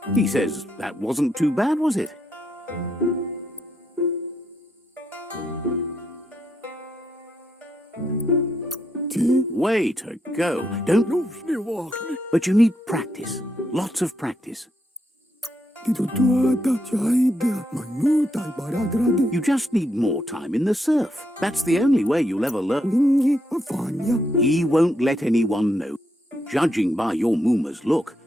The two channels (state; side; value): normal; both; correlation 0.79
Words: He says that wasn't too bad, was it? Way to go. Don't... But you need practice. Lots of practice. You just need more time in the surf. That's the only way you'll ever learn. He won't let anyone know. Judging by your Mooma's look,